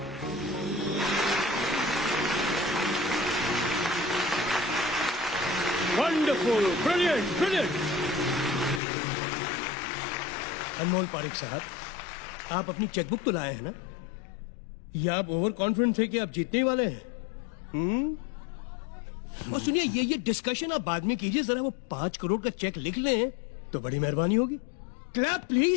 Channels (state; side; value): drops out; right; at 8.8 s